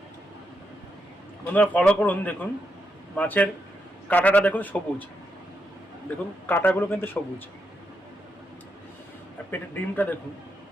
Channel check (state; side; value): normal; both; correlation 0.82